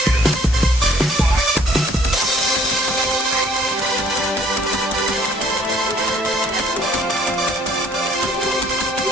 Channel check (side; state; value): both; normal; correlation 0.60